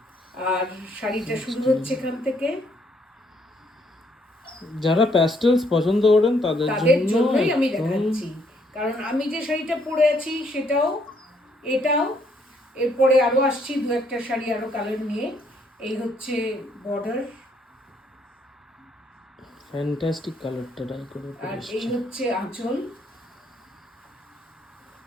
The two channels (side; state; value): both; normal; correlation 0.69